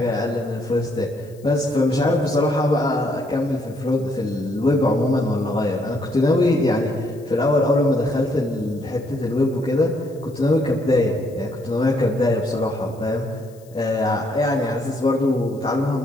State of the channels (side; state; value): left; noise; hiss, 29 dB below the sound